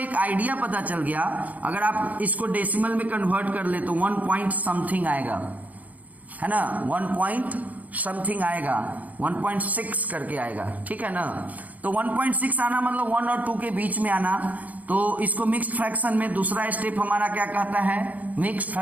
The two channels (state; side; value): late; left; 0.076 ms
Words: आइडिया पता चल गया, अगर आप इसको डेसिमल में कन्वर्ट कर ले तो 1 पॉइंट समथिंग आएगा, है ना, 1 पॉइंट समथिंग आएगा, 1.6 करके आएगा, ठीक है ना। तो 1.6 आना मतलब 1 और 2 के बीच में आना। तो इसको मिक्स्ड फ्रैक्शन में दूसरा स्टेप हमारा क्या कहता है? मिक्स्ड